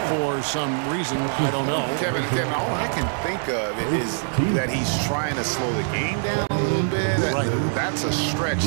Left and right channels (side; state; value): left; silent; digital silence